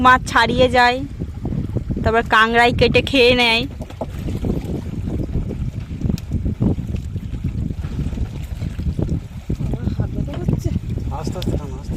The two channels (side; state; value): both; identical; correlation 1.00